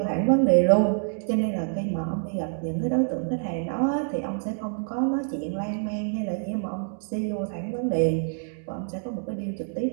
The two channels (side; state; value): left; silent; 61 dB below the other